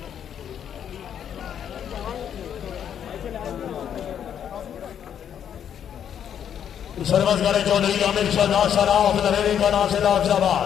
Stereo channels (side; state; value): right; quieter; 9.0 dB